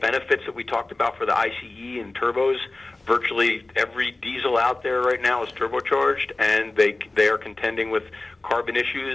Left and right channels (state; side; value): quieter; right; 3.0 dB